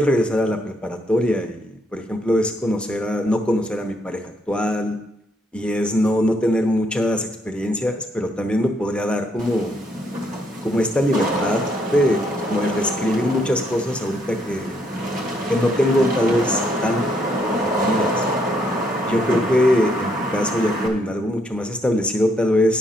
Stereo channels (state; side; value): normal; both; correlation 0.72